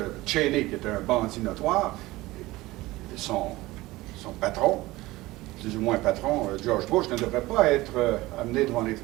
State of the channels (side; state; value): left; quieter; 19.1 dB